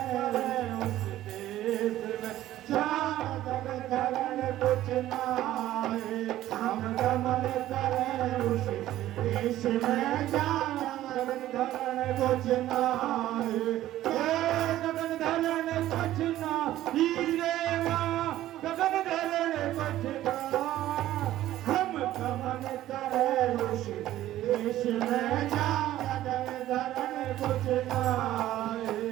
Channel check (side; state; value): left; quieter; 14.0 dB